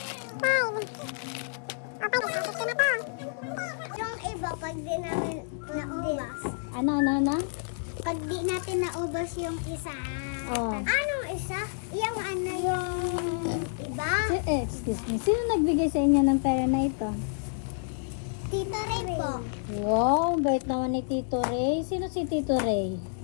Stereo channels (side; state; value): right; silent; digital silence